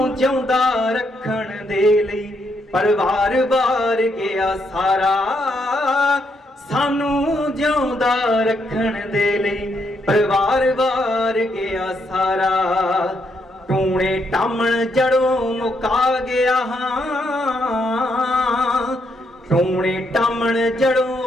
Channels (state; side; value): normal; both; correlation 0.76